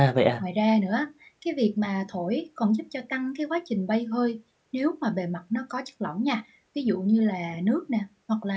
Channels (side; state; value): both; identical; correlation 1.00